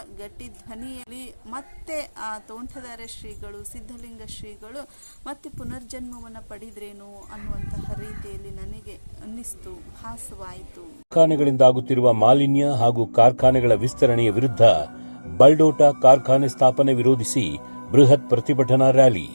ಗಟ್ಟಿ ಧ್ವನಿಯಲ್ಲಿ ಮತ್ತೆ ಆ ತೋಂಟದಾರ್ಯ ಶ್ರೀಗಳು ಸಿದ್ಧಲಿಂಗ ಶ್ರೀಗಳು ಮತ್ತೆ ಪುನರ್ಜನ್ಮವನ್ನು ಪಡೆದ್ರೇನು ಅನ್ನುವಂತಹ ರೀತಿಯಲ್ಲಿ ನನಗೆ ಅನ್ನಿಸ್ತು, ಭಾಸವಾಯಿತು. ಕಾರ್ಖಾನೆಗಳಿಂದ ಆಗುತ್ತಿರುವ ಮಾಲಿನ್ಯ ಹಾಗೂ ಕಾರ್ಖಾನೆಗಳ ವಿಸ್ತರಣೆಯ ವಿರುದ್ಧ ಬಲ್ಡೋಟ ಕಾರ್ಖಾನೆ ಸ್ಥಾಪನೆ ವಿರೋಧಿಸಿ ಬೃಹತ್ ಪ್ರತಿಭಟನಾ ರ್ಯಾಲಿ.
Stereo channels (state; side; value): inverted; both; correlation -1.00